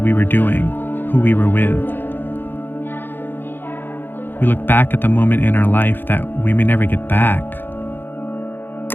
were doing, who we were with. We look back at the moment in our life that we may never get back.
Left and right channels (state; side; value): late; right; 0.097 ms